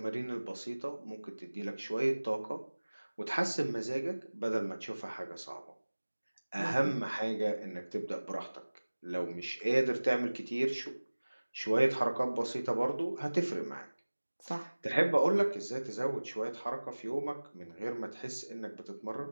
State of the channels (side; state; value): both; inverted; correlation -1.00